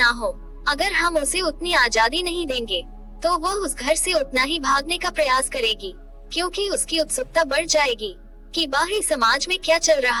हो, अगर हम उसे उतनी आजादी नहीं देंगे, तो वह उस घर से उतना ही भागने का प्रयास करेगी, क्योंकि उसकी उत्सुकता बढ़ जाएगी कि बाहरी समाज में क्या चल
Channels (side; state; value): both; identical; correlation 1.00